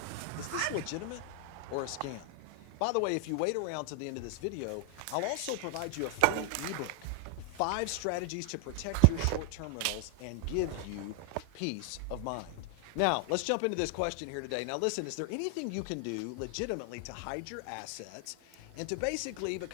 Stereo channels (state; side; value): different; both; correlation 0.00